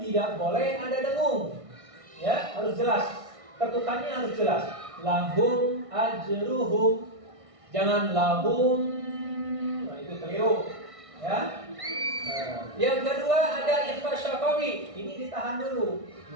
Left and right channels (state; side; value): late; left; 1.6 ms